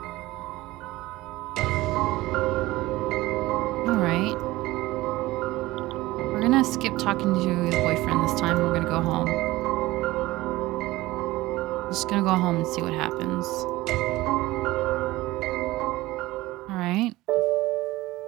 Alright. We're gonna skip talking to the boyfriend this time. We're gonna go home. Just gonna go home and see what happens. Alright.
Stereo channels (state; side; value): quieter; left; 18.6 dB